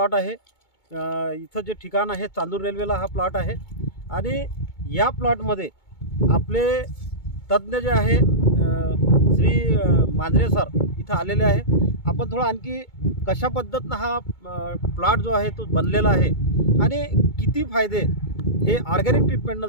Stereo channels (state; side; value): late; right; 2.2 ms